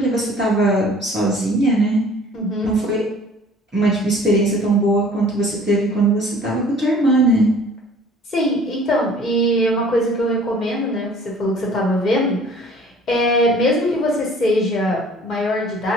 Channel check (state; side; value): normal; both; correlation 0.51